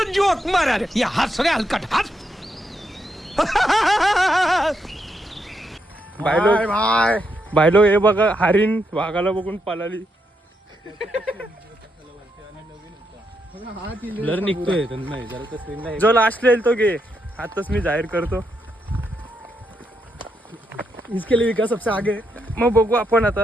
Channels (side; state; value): both; normal; correlation 0.81